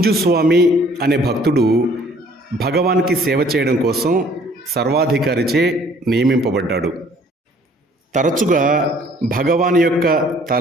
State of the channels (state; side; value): normal; both; correlation 0.57